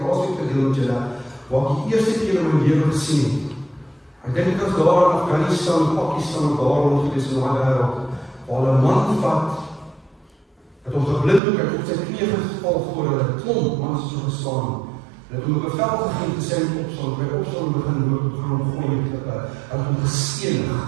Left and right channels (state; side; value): drops out; left; at 11.4 s